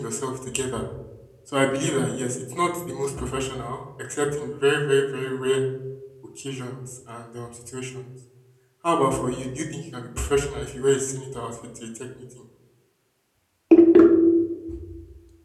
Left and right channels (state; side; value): identical; both; correlation 1.00